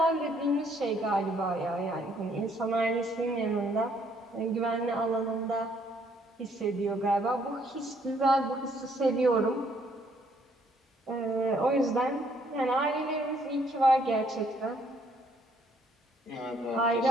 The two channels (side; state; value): both; normal; correlation 0.67